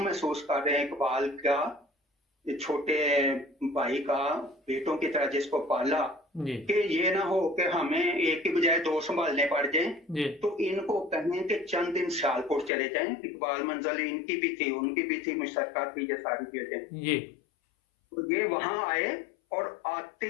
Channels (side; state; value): right; drops out; at 12.7 s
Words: महसूस कर रहे हैं इकबाल का, ये छोटे भाई का, बेटों की तरह जिसको पाला, جی کہ یہ نہ ہو کہ ہمیں ایک کی بجائے دو سنبھالنے پڑ جائیں. جی تو ان کو کہیں کہ چند دن سیالکوٹ چلے جائیں. اقبال منزل ان کی بھی تھی، ان کی بھی تھی، مشترکہ تھی یہ ساری چیزیں. جی تو یہ وہاں آئے اور